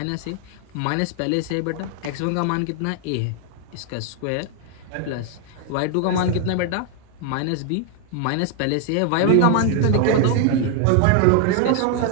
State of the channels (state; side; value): different; both; correlation 0.00